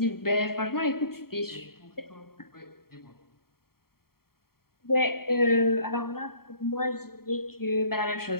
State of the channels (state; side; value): late; right; 0.93 ms